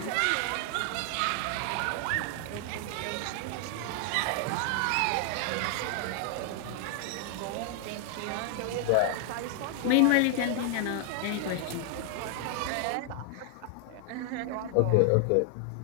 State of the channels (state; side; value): different; both; correlation 0.00